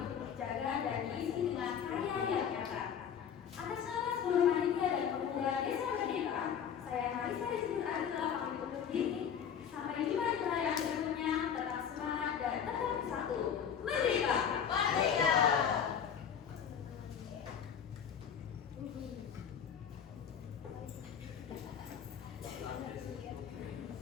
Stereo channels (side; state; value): right; quieter; 8.0 dB